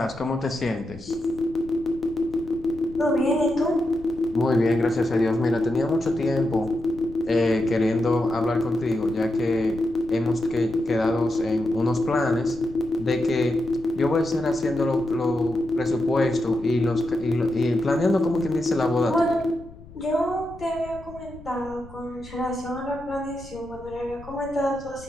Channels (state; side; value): noise; left; rumble, 19 dB below the sound